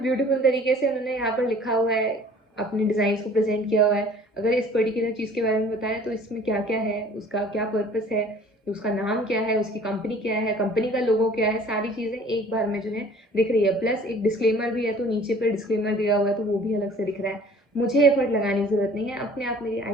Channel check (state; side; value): normal; both; correlation 0.50